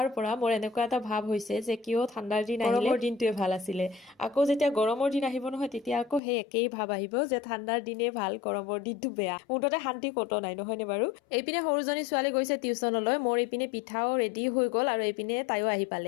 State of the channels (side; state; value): right; drops out; at 6.2 s